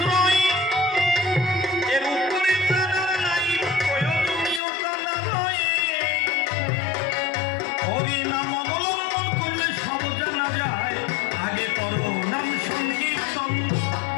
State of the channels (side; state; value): right; drops out; at 4.6 s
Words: এর উপরে জানা নাই প্রয়োজনীয়তা নয়। হরি নাম অবলম্বন করলে সব জানা যায়, আগে করো নাম সংকীর্তন।